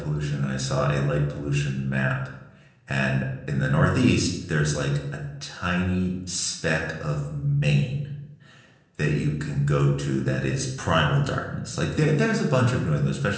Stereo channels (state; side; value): identical; both; correlation 1.00